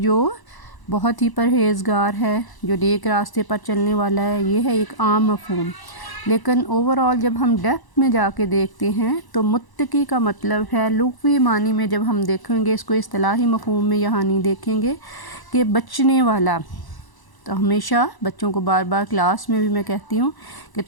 بہت ہی پرہیزگار ہے، جو نیک راستے پر چلنے والا ہے، یہ ہے ایک عام مفہوم۔ لیکن اوورآل جب ہم ڈیپتھ میں جا کے دیکھتے ہیں تو متقی کا مطلب ہے لغوی معنی میں، جب ہم دیکھیں گے اس کو اصطلاحی مفہوم میں یہاں نہیں دیکھیں گے کہ بچنے والا۔ تو ہمیشہ بچوں کو بار بار کلاس میں بھی میں کہتی ہوں کہ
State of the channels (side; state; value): right; late; 1.0 ms